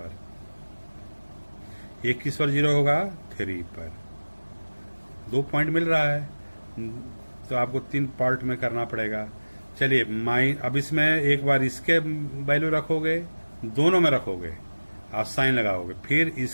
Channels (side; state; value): both; inverted; correlation -1.00